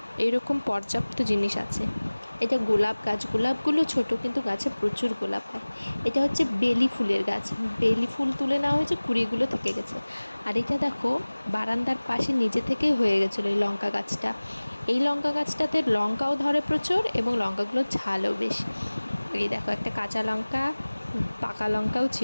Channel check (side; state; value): both; inverted; correlation -1.00